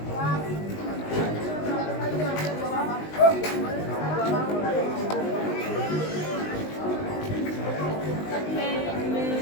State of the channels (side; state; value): right; late; 19 ms